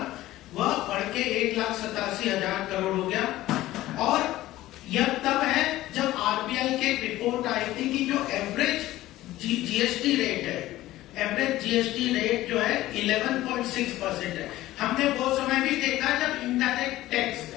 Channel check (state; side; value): quieter; right; 15.9 dB